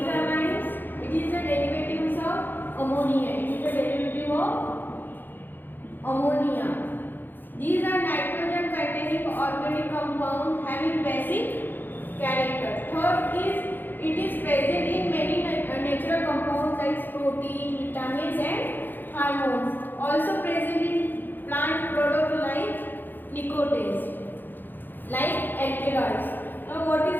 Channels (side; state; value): right; late; 0.092 ms